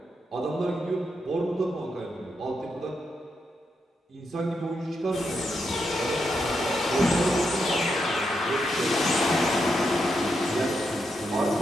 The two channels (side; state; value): both; normal; correlation 0.83